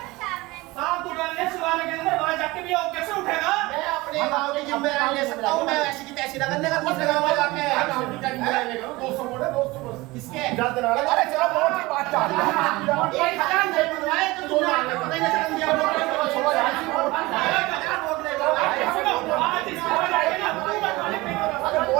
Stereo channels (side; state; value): left; quieter; 21.3 dB